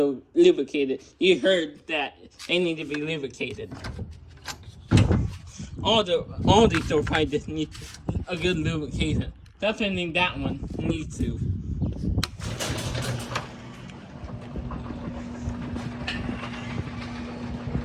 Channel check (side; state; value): both; identical; correlation 1.00